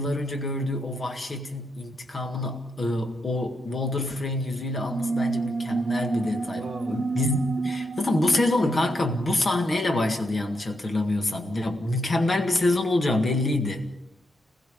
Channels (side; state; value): both; normal; correlation 0.81